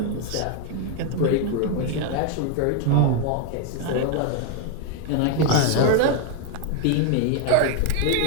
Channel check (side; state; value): both; different; correlation 0.01